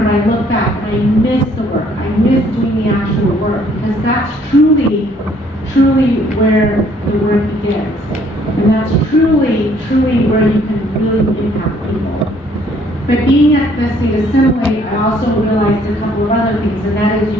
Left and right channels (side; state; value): both; normal; correlation 0.63